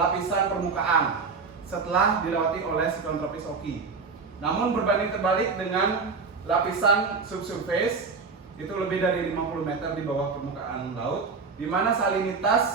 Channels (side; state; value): left; quieter; 4.8 dB